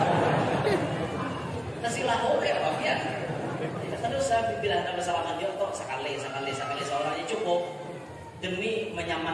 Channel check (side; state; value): both; identical; correlation 1.00